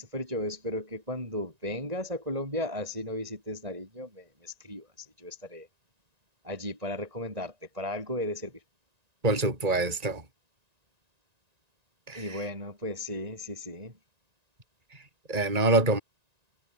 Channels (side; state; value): left; late; 1.9 ms